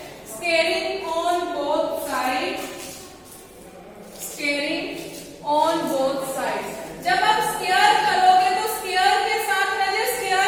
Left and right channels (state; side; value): identical; both; correlation 1.00